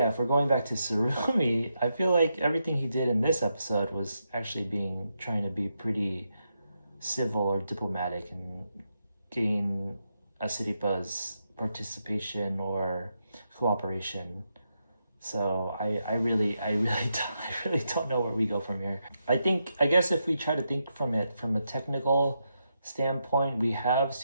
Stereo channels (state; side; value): inverted; both; correlation -0.84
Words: if we're going back to Tsurumi, I feel like everything he did in this episode was actually trying to be pretty civil or diplomatic and gain Asiripa's participation or cooperation. So I really don't know where we go from here. I guess if we try to think from it from a technical standpoint, we have